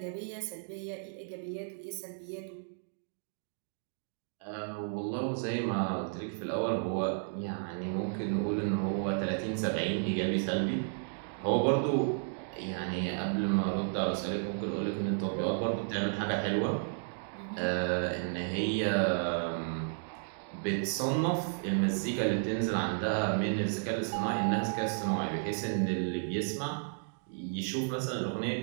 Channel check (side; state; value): left; silent; digital silence